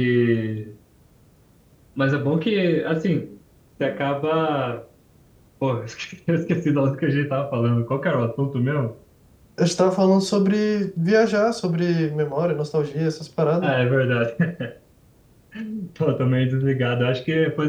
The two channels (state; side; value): identical; both; correlation 1.00